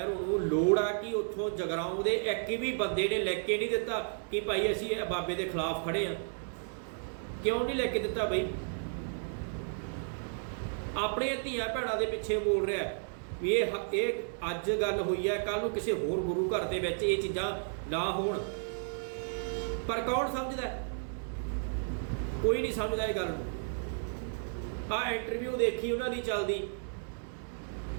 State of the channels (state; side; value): silent; left; digital silence